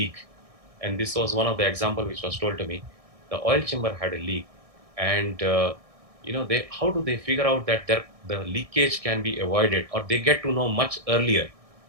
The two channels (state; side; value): late; left; 1.6 ms